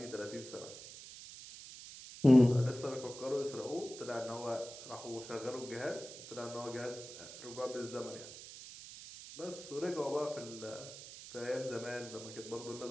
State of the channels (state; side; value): noise; right; hiss, 13 dB below the sound